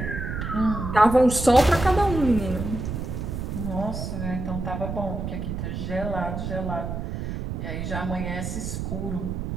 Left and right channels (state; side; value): noise; right; rumble, 4 dB below the sound